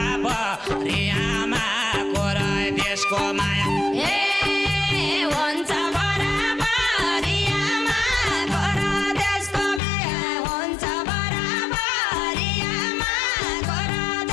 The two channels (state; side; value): drops out; right; at 9.8 s